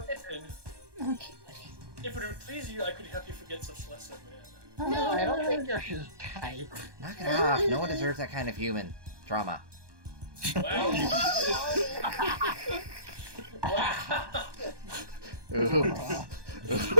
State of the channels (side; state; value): left; late; 1.2 ms